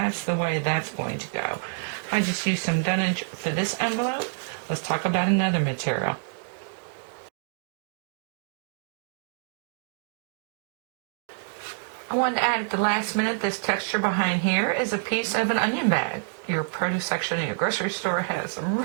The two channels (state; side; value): silent; left; digital silence